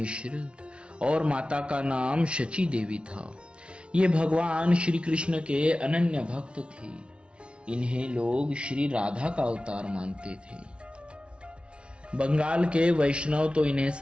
और माता का नाम शची देवी था। ये भगवान श्री कृष्ण के अनन्य भक्त थे। इन्हें लोग श्री राधा का अवतार मानते थे। बंगाल के वैष्णव तो इन्हें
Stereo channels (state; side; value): late; left; 0.058 ms